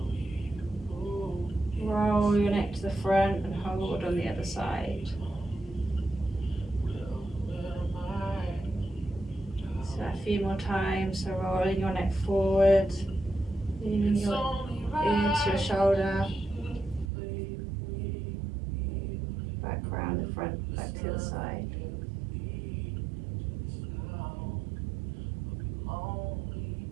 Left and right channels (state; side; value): drops out; left; at 17.1 s